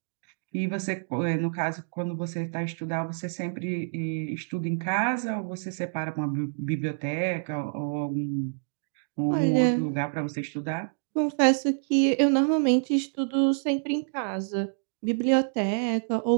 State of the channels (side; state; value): left; silent; digital silence